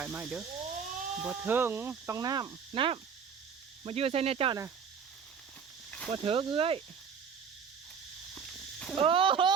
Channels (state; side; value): quieter; left; 6.7 dB